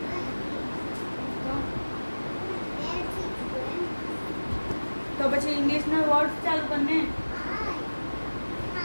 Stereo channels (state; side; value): inverted; both; correlation -1.00